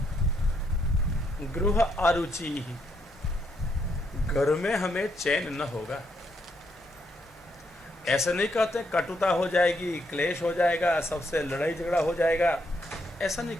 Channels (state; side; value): normal; both; correlation 0.76